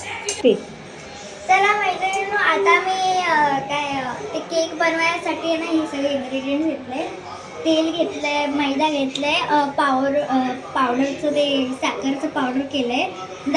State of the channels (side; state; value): both; identical; correlation 1.00